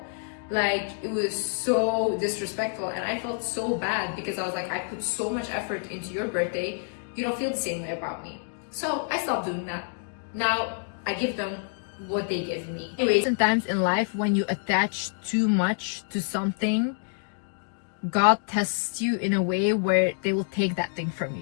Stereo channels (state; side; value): silent; right; 60 dB below the other